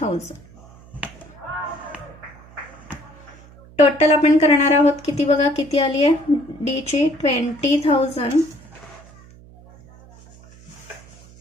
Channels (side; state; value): right; noise; hum, 23 dB below the sound